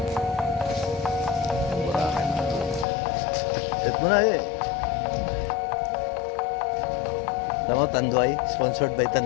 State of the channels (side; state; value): right; drops out; at 2.9 s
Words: Set mo na eh. Alam mo, Tanduay. Sponsored by